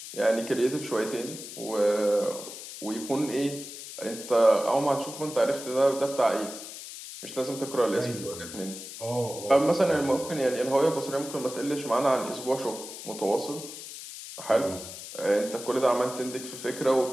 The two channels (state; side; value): noise; left; hiss, 11 dB below the sound